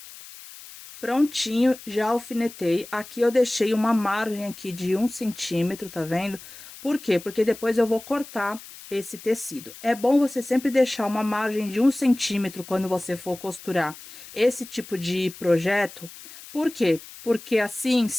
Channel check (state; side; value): noise; left; hiss, 17 dB below the sound